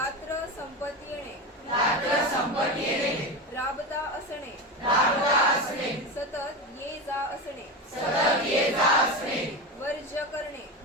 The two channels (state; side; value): normal; both; correlation 0.21